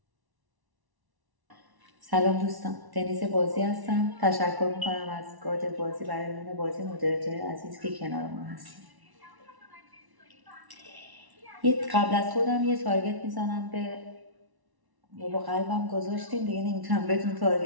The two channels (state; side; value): late; left; 1.1 ms